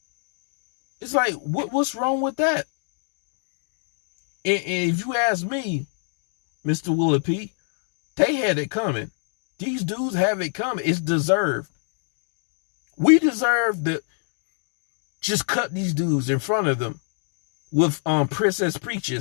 It's like, what's wrong with that? And if you ask me, Mr. Willie P, they had it coming. These dudes have it coming. It's deserved. We deserve to just cut these dudes in front of them with Princess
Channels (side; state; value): right; silent; digital silence